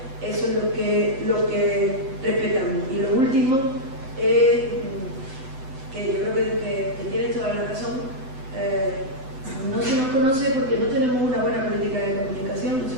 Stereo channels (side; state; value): left; late; 7.7 ms